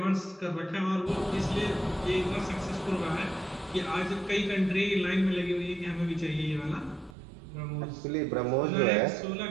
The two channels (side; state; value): left; drops out; at 7.2 s